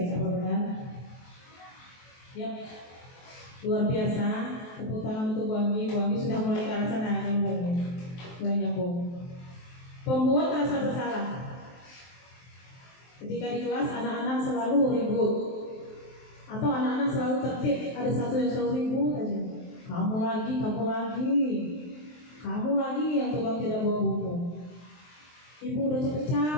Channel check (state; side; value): late; right; 23 ms